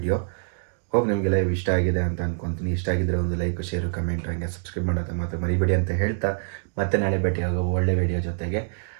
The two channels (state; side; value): silent; left; digital silence